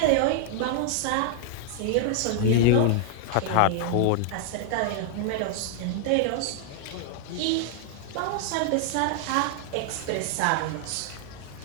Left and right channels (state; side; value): different; both; correlation 0.00